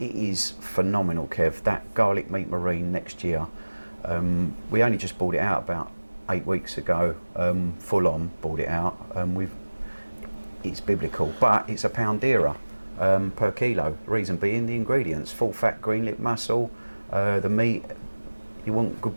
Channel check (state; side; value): inverted; both; correlation -1.00